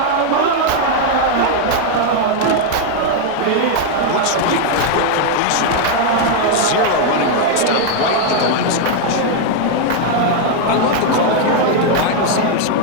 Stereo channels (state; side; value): different; both; correlation 0.00